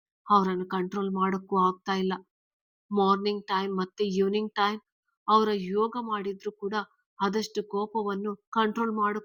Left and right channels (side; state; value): both; identical; correlation 1.00